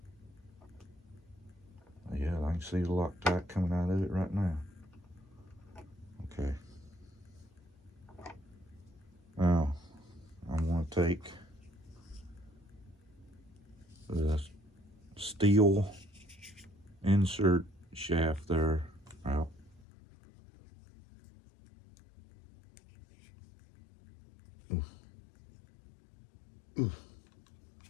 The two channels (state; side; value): drops out; right; at 19.9 s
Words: Yeah, I can see the Loctite coming out of it right now. Okay. Now, I'm going to take the steel insert shaft there out. Oof. Oof.